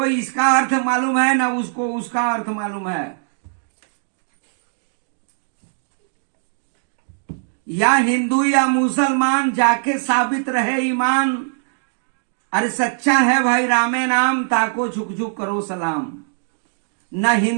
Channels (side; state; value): left; silent; digital silence